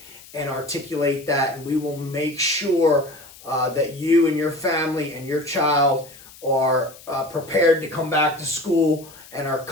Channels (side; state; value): left; noise; hiss, 21 dB below the sound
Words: and articulate that, and we will make sure that you and your family and your child are prepared to come back to school and are